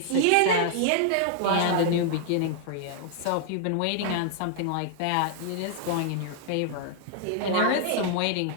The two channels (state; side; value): different; both; correlation -0.01